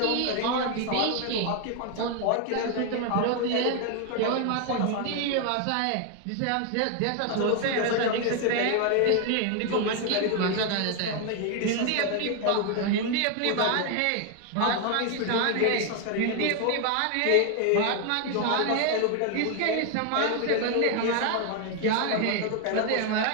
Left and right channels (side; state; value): both; different; correlation 0.01